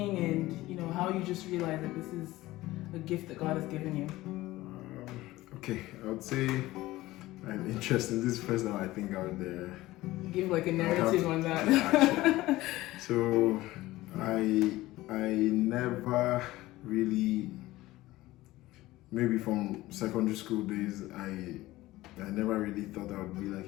and how you just realized that this is a gift that God has given you. Okay, I would say I'm interested. This is the first time I think I would give like a narrative on that. Yeah, so I never really, maybe from secondary school days, I never really thought I would be like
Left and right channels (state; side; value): quieter; right; 17.7 dB